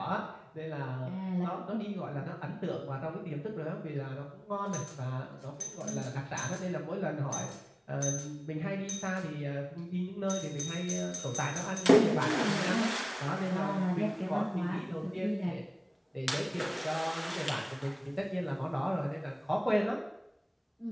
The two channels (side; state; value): both; identical; correlation 1.00